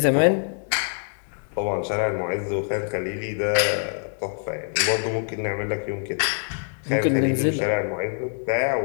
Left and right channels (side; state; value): right; silent; 59 dB below the other